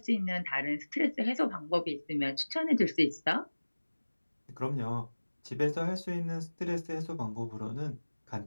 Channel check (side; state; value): both; inverted; correlation -1.00